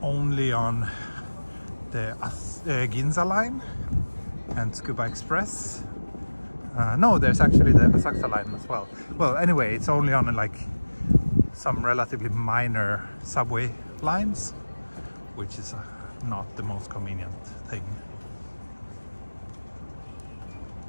only on the Ginza line and Tsukuba Express. No, there's actually the Asakusa line as well. Well, anyway, it's only on like some relatively minor subway lines, which is not the most convenient thing.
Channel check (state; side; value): inverted; both; correlation -1.00